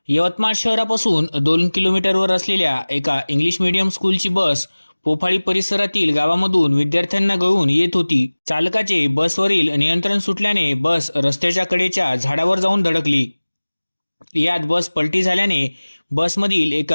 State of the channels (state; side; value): inverted; both; correlation -1.00